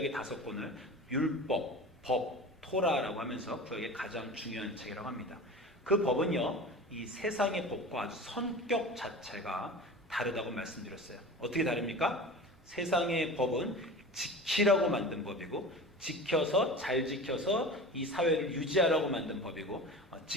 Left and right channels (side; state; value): both; normal; correlation 0.34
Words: 5권을 율법, 법, 토라라고 하면서 구약의 가장 중요한 책이라고 합니다. 그 법은요, 이 세상의 법과 아주 성격 자체가 다르다고 말씀드렸어요. 어떻게 다릅니까? 세상의 법은 지키라고 만든 법이고, 잘 지켜서 이 사회를 유지하라고 만든 법이고,